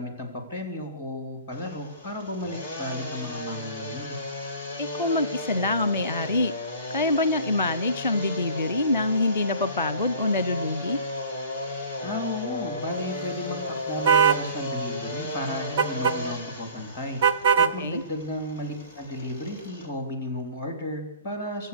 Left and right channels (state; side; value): inverted; both; correlation -0.45